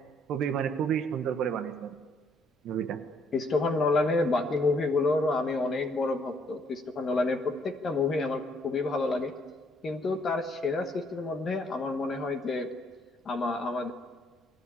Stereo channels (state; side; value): normal; both; correlation 0.67